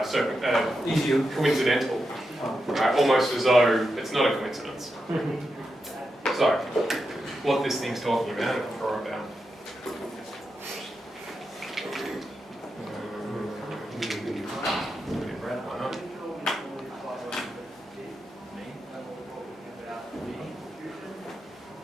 Easier. coincidental, right? Almost as though it's not a coincidence. So, what this thing's talking about, if I draw it down. Why not?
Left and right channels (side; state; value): both; normal; correlation 0.87